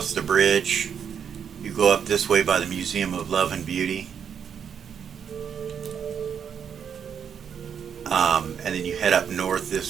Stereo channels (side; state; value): left; quieter; 7.6 dB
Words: the bridge. You go up this way by the Museum of Love and Beauty. And then you head up north